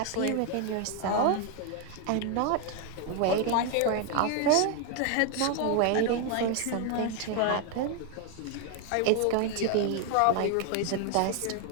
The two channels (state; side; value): different; both; correlation 0.00